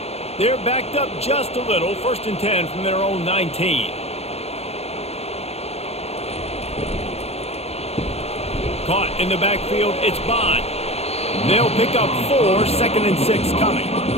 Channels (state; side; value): late; right; 0.30 ms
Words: They're backed up just a little. 1st and 10 from their own 19. Caught in the backfield, it's Bond. They'll pick up 4, 2nd and 6 coming.